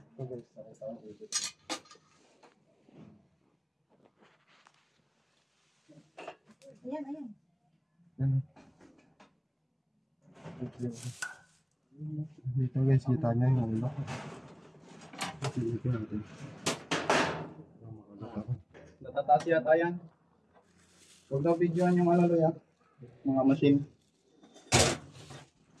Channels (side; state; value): both; identical; correlation 1.00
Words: Ayan, ayan. Dito guys, kita niya yung ulo. Dito natin. Natataas yata yan. Huwag daw videoan yung alaloy ah. Mga machine.